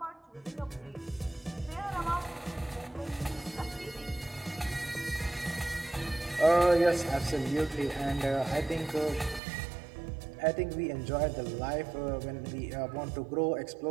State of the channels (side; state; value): left; drops out; at 9.4 s